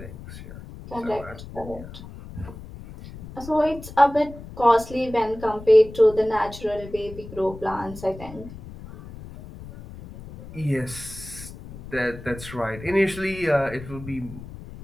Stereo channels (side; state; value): left; noise; rumble, 14 dB below the sound